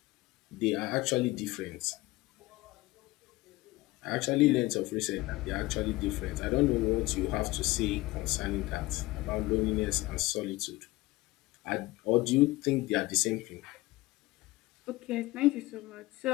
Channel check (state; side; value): quieter; right; 19.9 dB